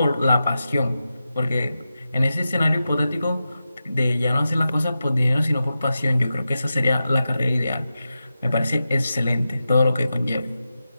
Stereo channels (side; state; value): both; inverted; correlation -0.91